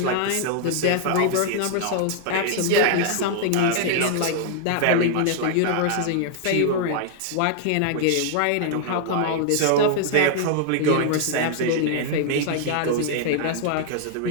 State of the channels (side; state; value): both; different; correlation -0.01